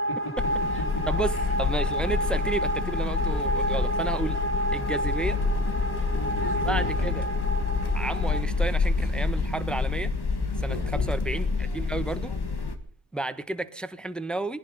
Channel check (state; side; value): normal; both; correlation 0.44